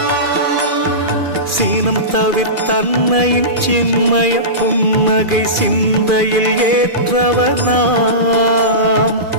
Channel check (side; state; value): left; late; 2.4 ms